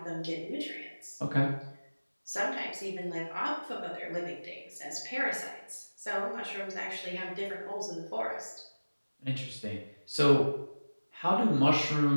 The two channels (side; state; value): both; inverted; correlation -1.00